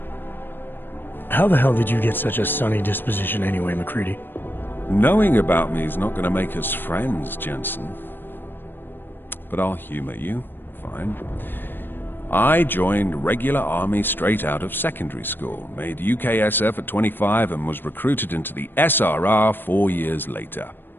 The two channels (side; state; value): right; late; 0.096 ms